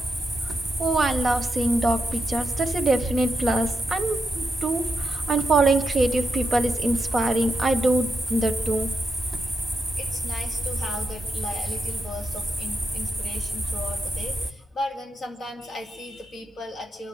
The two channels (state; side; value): normal; both; correlation 0.85